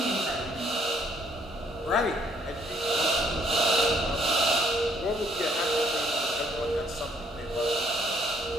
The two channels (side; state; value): both; normal; correlation 0.65